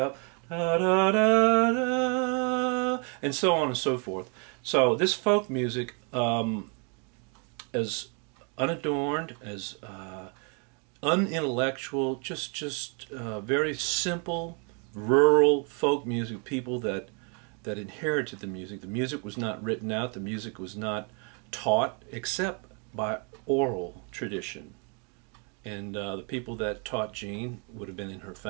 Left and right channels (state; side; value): quieter; left; 36.5 dB